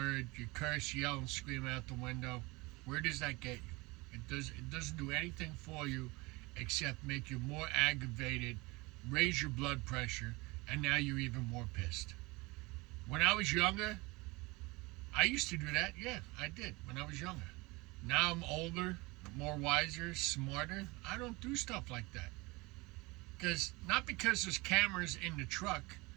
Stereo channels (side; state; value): left; quieter; 23.9 dB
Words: you curse, yell, and scream out the window, where does that get you? It doesn't do anything for you except make you more aggravated, raise your blood pressure, and now you're even more pissed. When I was younger, I used to do that. Yeah, I did when I was younger. Now I'm older, more wiser, smarter. I don't do stuff like that. Not because there's cameras in the truck,